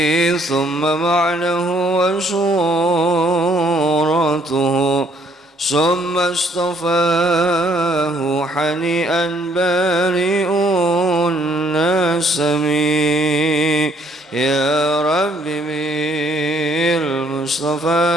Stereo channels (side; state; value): both; normal; correlation 0.65